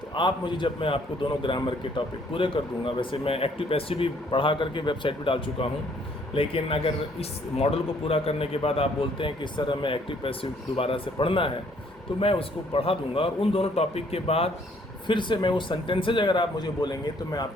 तो आप मुझे, जब मैं आपको दोनों ग्रामर के टॉपिक पूरे कर दूंगा, वैसे मैं एक्टिव पैसिव भी पढ़ा करके वेबसाइट पर डाल चुका हूँ, लेकिन अगर इस मॉडल को पूरा करने के बाद आप बोलते हैं कि इस तरह मैं एक्टिव पैसिव दोबारा से पढ़ना है तो मैं उसको पढ़ा दूंगा। और उन दोनों टॉपिक के बाद फिर से मैं वो सेंटेंसेज अगर आप मुझे बोलेंगे तो मैं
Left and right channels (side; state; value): both; normal; correlation 0.64